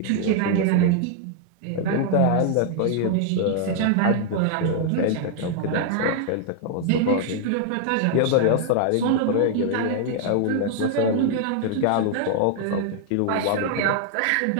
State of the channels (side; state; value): both; different; correlation 0.00